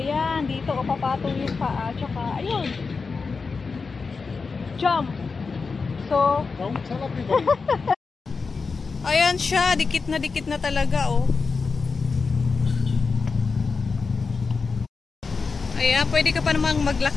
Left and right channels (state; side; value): quieter; right; 4.7 dB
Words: dito o papatong yung paa. Tsaka, ayun. Jump. So, ayan siya, dikit na talaga oh. Ayan, pwede ka pa namang